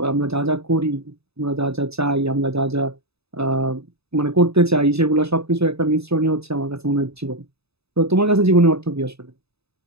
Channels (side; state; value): left; late; 0.79 ms